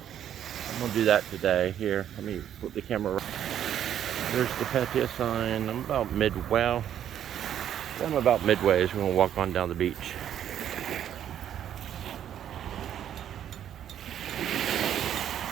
I'm going to do that today. Here, let me flip the camera around. There's the Pattaya sign. I'm about midway as we're going to walk on down the beach.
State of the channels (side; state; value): left; quieter; 10.2 dB